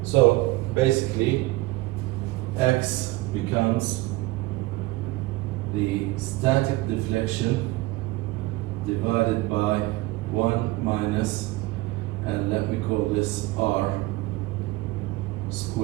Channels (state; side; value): quieter; left; 19.8 dB